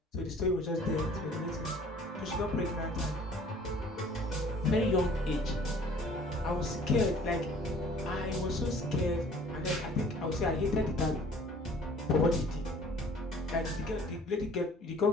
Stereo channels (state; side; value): normal; both; correlation 0.52